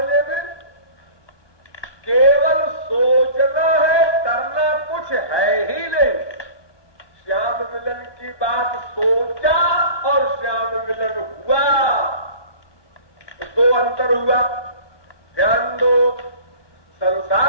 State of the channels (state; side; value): late; right; 1.2 ms